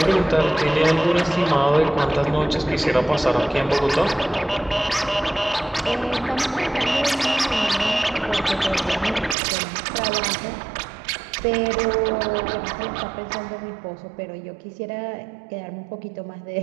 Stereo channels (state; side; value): drops out; left; at 9.3 s